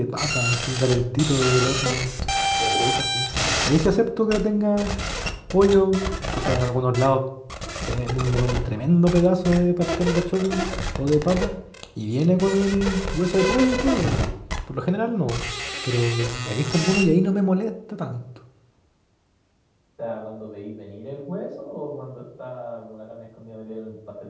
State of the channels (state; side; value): identical; both; correlation 1.00